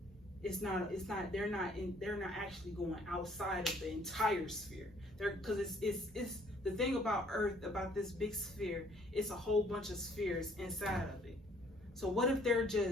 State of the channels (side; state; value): both; normal; correlation 0.61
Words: They're not actually going outside of the entire sphere. Because it's the thing about Earth, about this big sphere, it's a whole bunch of spheres inside of it. So what if they're